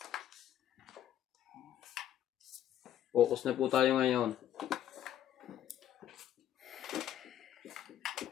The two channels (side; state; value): right; quieter; 11.3 dB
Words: Focus na po tayo ngayon.